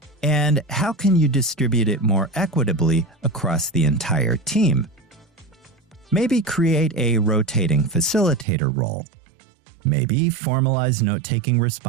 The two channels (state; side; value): drops out; left; at 8.5 s